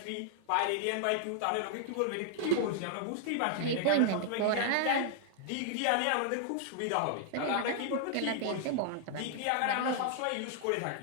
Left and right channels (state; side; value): different; both; correlation -0.01